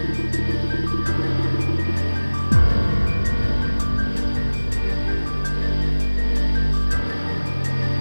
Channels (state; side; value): inverted; both; correlation -1.00